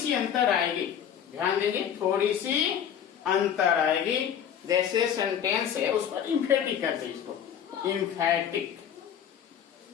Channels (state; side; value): quieter; right; 8.9 dB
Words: अंतर आएगी, ध्यान देंगे, थोड़ी सी अंतर आएगी। जैसे सेंटेंस है उस पर इम्फेटिक करते हैं, इसको इम्फेटिक,